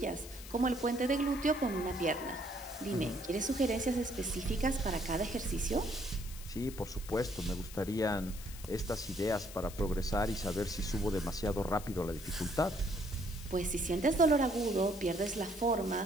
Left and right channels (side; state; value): left; noise; hiss, 15 dB below the sound